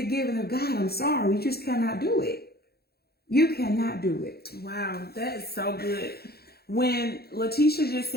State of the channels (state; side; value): late; right; 0.46 ms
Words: giving of God. I'm sorry. You just cannot do it. You cannot do it. Wow, that is so good. When Letitia just